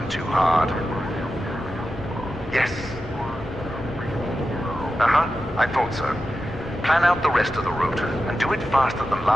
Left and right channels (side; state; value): both; normal; correlation 0.91